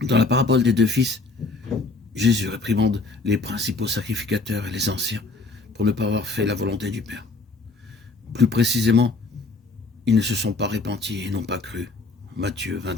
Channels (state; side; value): quieter; right; 3.7 dB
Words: Dans la parabole des deux fils, Jésus réprimande les principaux sacrificateurs et les anciens pour ne pas avoir fait la volonté du Père. Plus précisément, ils ne se sont pas repentis et n'ont pas cru. Matthieu